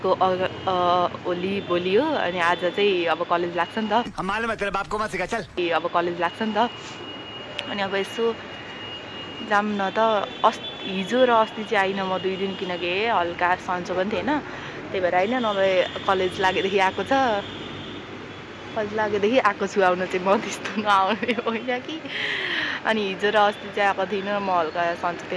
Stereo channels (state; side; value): identical; both; correlation 1.00